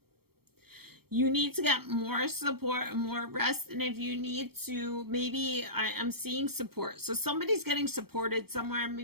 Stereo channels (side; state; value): left; late; 0.95 ms